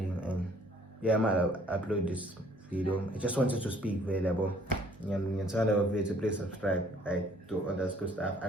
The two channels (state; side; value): normal; both; correlation 0.59